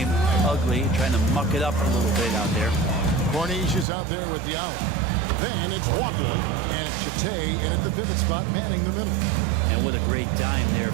ugly, trying to muck it up a little bit out there. Corniche is out there with the out. Then it's Walker, and it's Chate, and at the pivot spot, manning the middle. And what a great dime there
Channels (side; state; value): left; drops out; at 3.9 s